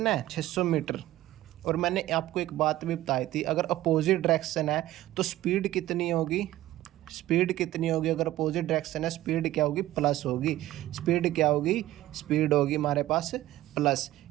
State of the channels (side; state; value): left; quieter; 15.2 dB